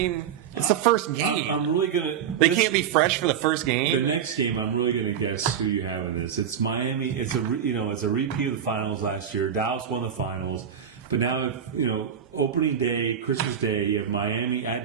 it's the first game. I'm really gonna. They can't be fresh for the first game. The next game, I'm really gonna guess who you have in this. It's Miami. It's a repeat of the finals last year. Dallas won the finals, but now opening day, Christmas Day, you have Miami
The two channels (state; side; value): quieter; left; 8.4 dB